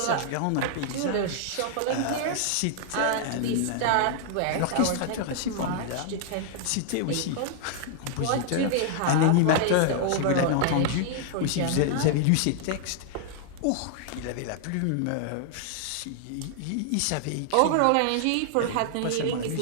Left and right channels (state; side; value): different; both; correlation -0.01